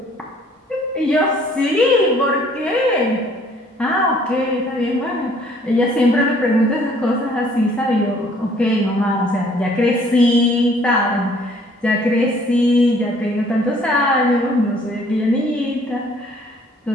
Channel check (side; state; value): both; normal; correlation 0.59